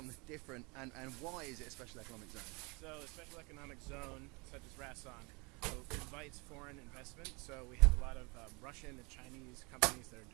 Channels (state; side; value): quieter; left; 29.1 dB